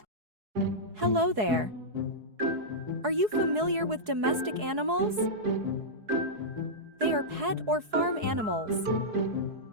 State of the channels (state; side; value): late; left; 4.7 ms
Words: Hello there! Are you familiar with domestic animals? They are pet or farm animals.